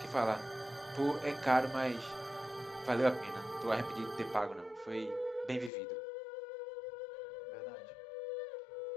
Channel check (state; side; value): drops out; right; at 5.7 s